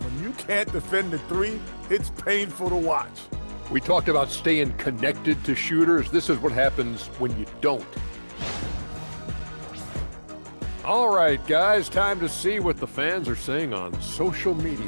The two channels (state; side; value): inverted; both; correlation -1.00